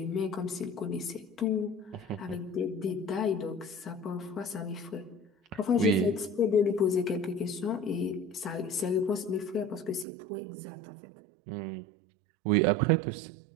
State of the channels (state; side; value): drops out; left; at 10.1 s